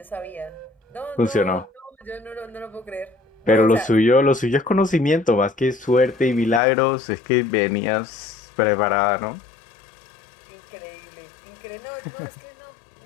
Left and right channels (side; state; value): right; drops out; at 6.6 s